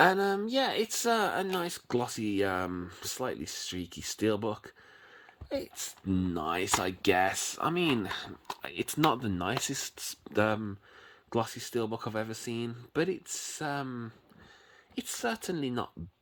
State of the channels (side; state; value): both; identical; correlation 1.00